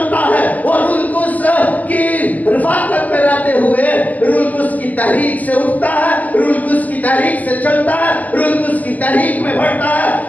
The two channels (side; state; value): right; late; 0.079 ms